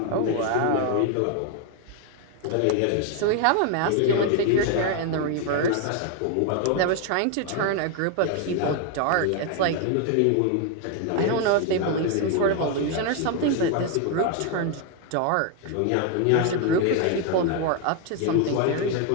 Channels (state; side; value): different; both; correlation 0.01